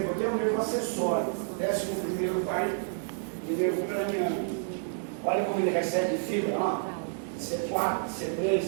aqui é um nervo acessório, 11º par de nervo craniano. Olha como ele recebe fibra, ó. C4,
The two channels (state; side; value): silent; left; digital silence